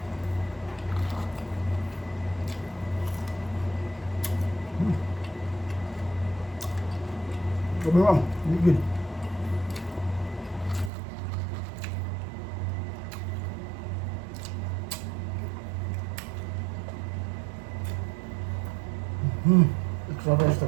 Sabi lang, good. Extra rice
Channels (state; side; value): drops out; left; at 10.9 s